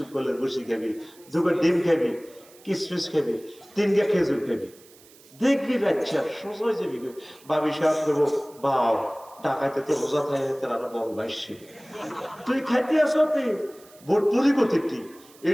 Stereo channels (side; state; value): right; noise; hiss, 25 dB below the sound